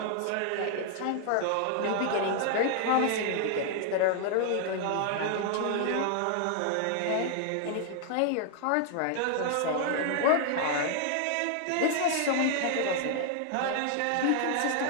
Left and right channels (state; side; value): different; both; correlation 0.00